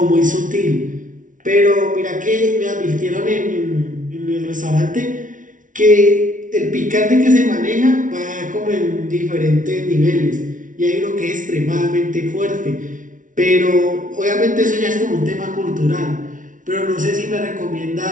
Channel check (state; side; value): late; left; 0.38 ms